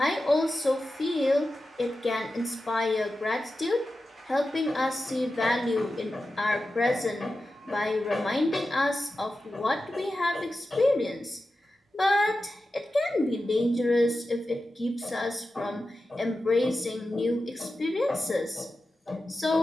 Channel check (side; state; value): both; normal; correlation 0.92